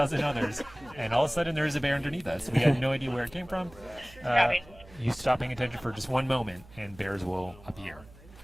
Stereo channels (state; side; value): noise; right; hum, 22 dB below the sound